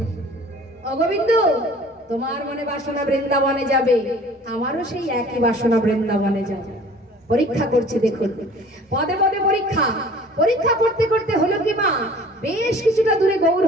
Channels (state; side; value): normal; both; correlation 0.48